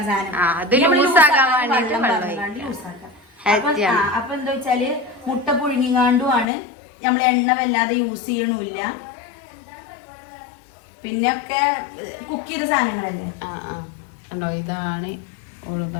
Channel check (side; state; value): right; drops out; at 6.5 s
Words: സാധനം ലൂസാക്കാം. അപ്പൊ എന്താ വെച്ചാല് മുട്ട പുഴുങ്ങിങ്ങാണ്ടുമാണ്. നമ്മൾ എണ്ണ വല്ലാതെ യൂസ് ചെയ്യണില്ല. പിന്നെ ഒക്കെ കുക്ക് ചെയ്ത സാധനങ്ങളല്ലേ. ഇതാണ് ഓള്